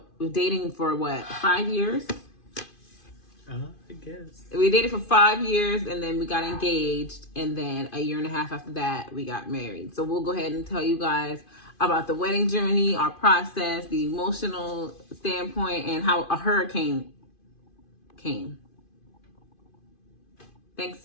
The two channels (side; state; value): right; late; 2.5 ms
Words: dating for what, 5 years? I guess. We dated for 5 years, and then we got engaged, and then a year and a half after that, we got married. So we'll go ahead and tell you guys about the wedding journey, our process, the emotional standpoint, and how a hurricane came. Thanks,